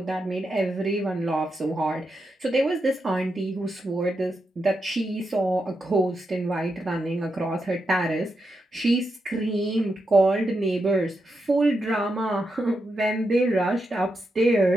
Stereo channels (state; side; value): normal; both; correlation 0.85